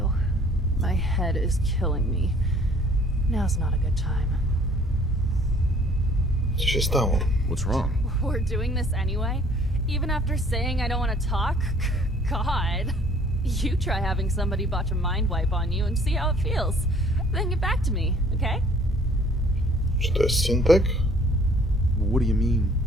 My head is killing me. Now's not a good time. Co się stało? What's wrong? We're doing this anyway? Even after saying I don't want to talk? God. You try having somebody botch a mind wipe on you and see how it feels. Then get back to me, okay? Czy to jest Syntek? What do you mean,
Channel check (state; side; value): normal; both; correlation 0.56